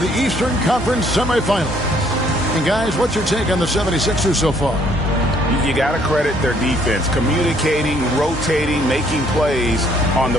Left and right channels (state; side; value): normal; both; correlation 0.64